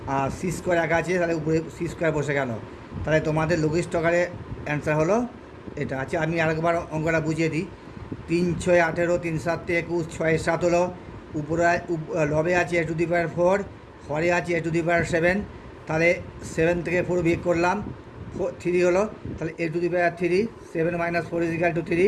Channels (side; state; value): both; identical; correlation 1.00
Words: আর c² একা আছে, তাহলে উপরে c² বসে গেল। তাহলে তোমাদের লঘিষ্ঠ আকারে অ্যান্সার হলো এটা। আছে আমি আরেকবার অঙ্কটা বুঝিয়ে দিই। 3 6 18, 3 7 21, 6 7 হলো। উপরে লবে আছে a⁴, হরে আছে a⁻7, তাহলে 7 থেকে 4 বিয়োগ করলাম 3 হলো, তাহলে a⁻3, 7 - 4 =